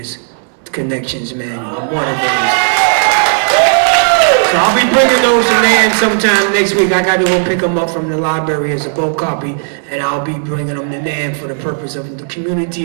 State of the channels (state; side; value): silent; left; digital silence